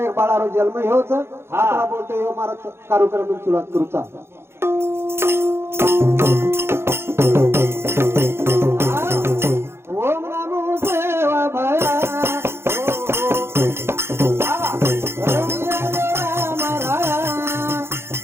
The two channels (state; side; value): late; left; 0.12 ms